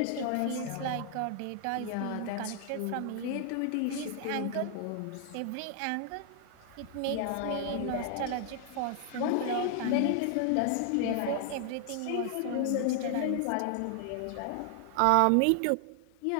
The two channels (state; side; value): different; both; correlation 0.00